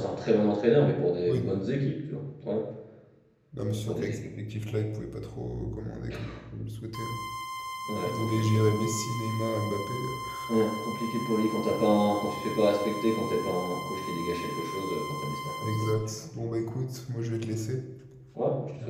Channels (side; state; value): both; identical; correlation 1.00